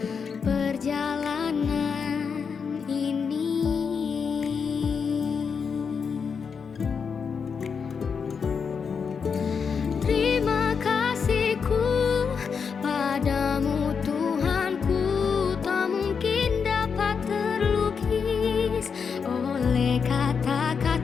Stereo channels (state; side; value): quieter; right; 6.1 dB